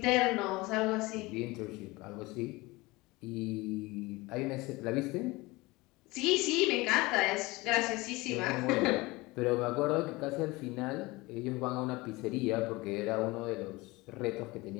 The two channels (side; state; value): right; quieter; 22.2 dB